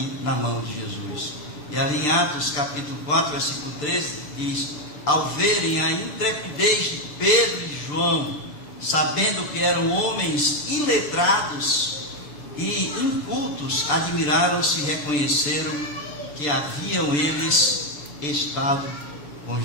na mão de Jesus. E ali em Atos capítulo 4, versículo 13, diz: ao verem a intrepidez de Pedro e João, sabendo que eram homens iletrados e incultos, admiraram-se e reconheceram que haviam eles estado com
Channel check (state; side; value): late; right; 6.8 ms